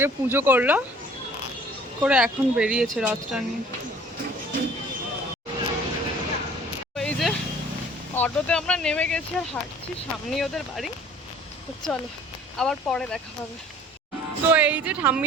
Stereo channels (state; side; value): normal; both; correlation 0.52